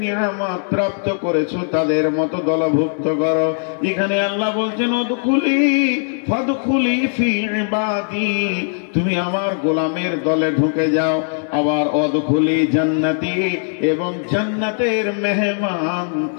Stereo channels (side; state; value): right; silent; 63 dB below the other